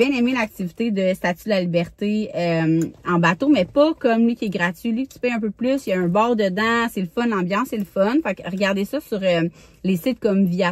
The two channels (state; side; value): identical; both; correlation 1.00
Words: aimé l'activité de Statue de la Liberté en bateau, mais pas comme lui qui est gratuit. Lui, tu payes un peu plus, il y a un bar dedans, c'est le fun, l'ambiance, c'est le fun. Fait que regardez ça sur les sites comme